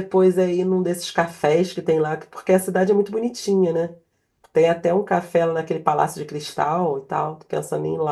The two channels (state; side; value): identical; both; correlation 1.00